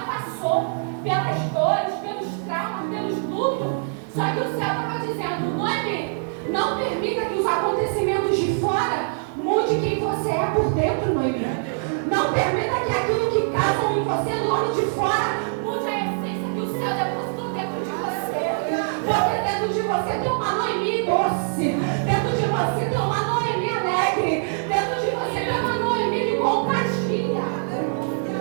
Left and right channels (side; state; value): left; silent; 63 dB below the other